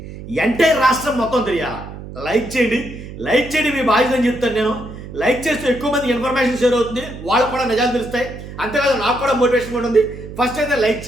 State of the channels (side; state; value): right; noise; hum, 12 dB below the sound